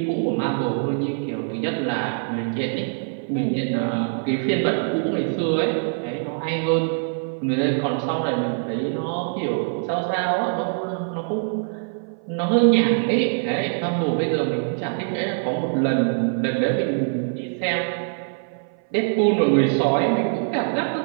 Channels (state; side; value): silent; left; 58 dB below the other